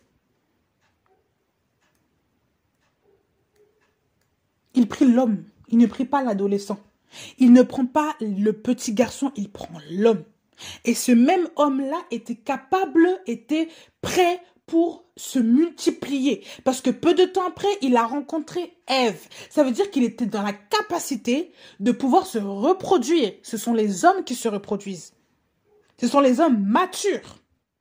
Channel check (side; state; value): both; identical; correlation 1.00